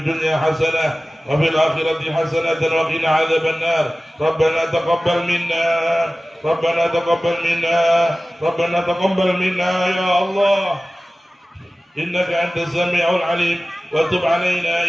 dunya hasanah wa fil akhirati hasanah wa qina adzaban nar. Rabbana taqabbal minna, Rabbana taqabbal minna, Rabbana taqabbal minna ya Allah. إنك أنت السميع العليم وتب علينا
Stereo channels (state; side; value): normal; both; correlation 0.97